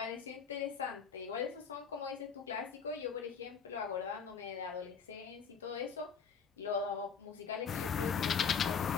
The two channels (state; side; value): quieter; right; 6.2 dB